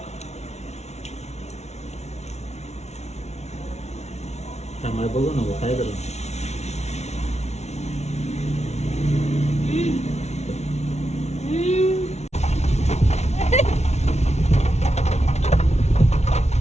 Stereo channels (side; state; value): right; late; 0.32 ms